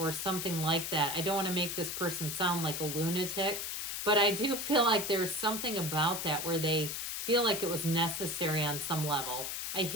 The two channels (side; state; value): left; noise; hiss, 4 dB below the sound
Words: something like that. I don't want to make this person sound like a lunatic, but I do feel like there's something about that where they feel like it was necessary on some level. I